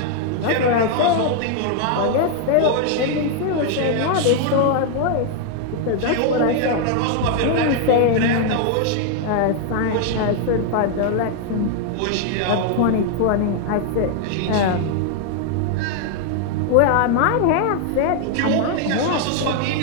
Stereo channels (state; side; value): different; both; correlation 0.00